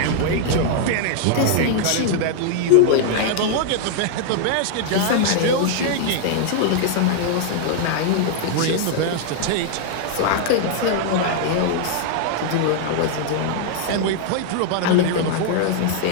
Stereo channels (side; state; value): both; different; correlation 0.00